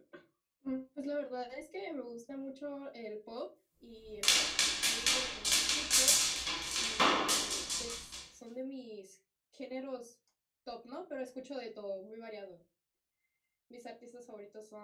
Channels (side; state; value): both; identical; correlation 1.00